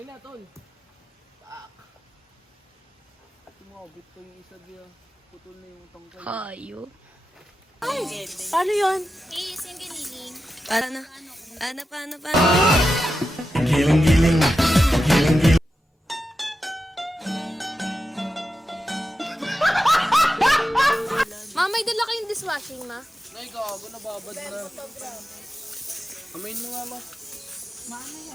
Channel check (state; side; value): normal; both; correlation 0.91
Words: na, tol. Tumabit ko yung isa diya. Putol na yung tangkay. Hayo. Paano yun? Is, yung giniling. Paano? Paano? Ma, may dala kayong dishwashing, ma? Nay, gago, nababad na. Amayin mo nga, ma.